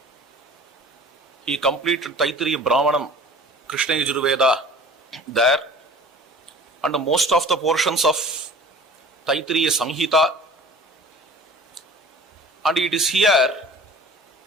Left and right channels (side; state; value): both; normal; correlation 0.45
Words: He completed Taittiriya Brahmanam, Krishna Yajurveda there, and most of the portions of Taittiriya Samhita. And it is here